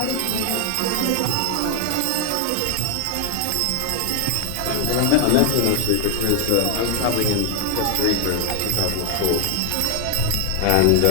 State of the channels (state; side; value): different; both; correlation 0.01